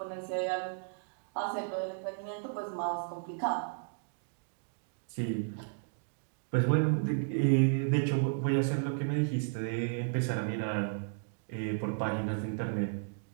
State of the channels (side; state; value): left; silent; digital silence